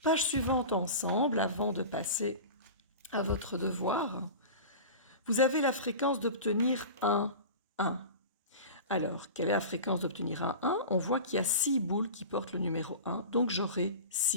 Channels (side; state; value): both; inverted; correlation -0.33